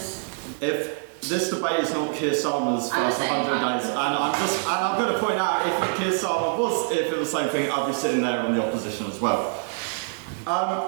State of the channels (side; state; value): left; silent; digital silence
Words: If this debate is not Keir Starmer's first 100 days, and I'm going to point out, if Keir Starmer was, if it was the same thing, I'd be sitting there on the opposition as well.